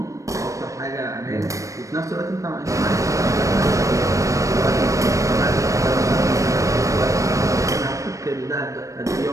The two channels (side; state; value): left; late; 0.16 ms